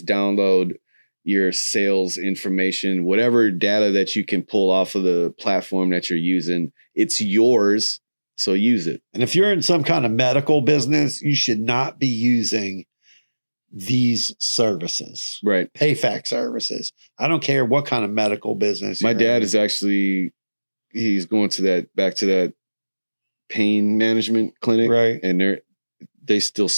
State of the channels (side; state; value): both; inverted; correlation -1.00